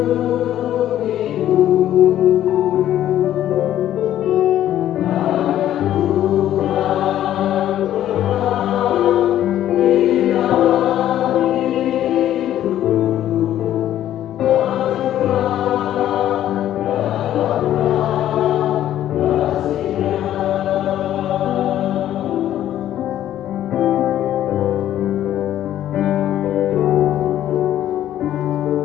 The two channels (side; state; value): right; quieter; 12.1 dB